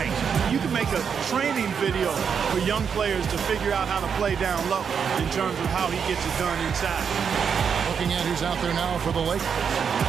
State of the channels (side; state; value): left; quieter; 6.9 dB